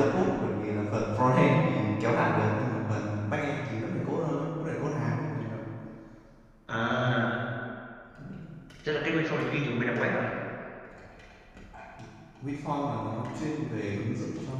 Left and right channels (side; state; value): both; identical; correlation 1.00